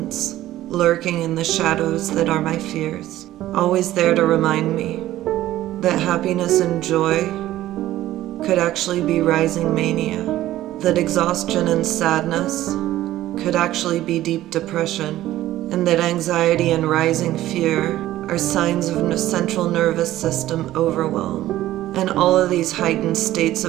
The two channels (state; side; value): quieter; left; 14.5 dB